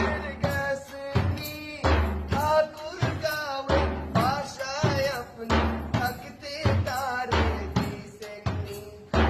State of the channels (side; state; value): both; identical; correlation 1.00